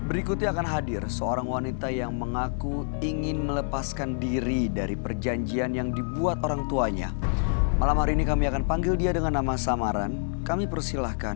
Berikutnya akan hadir seorang wanita yang mengaku ingin melepaskan diri dari perjanjian yang dibuat orang tuanya. Malam hari ini kami akan panggil dia dengan nama samaran. Kami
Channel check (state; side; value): silent; right; digital silence